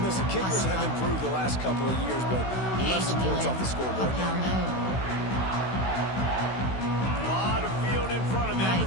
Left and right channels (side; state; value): right; late; 16 ms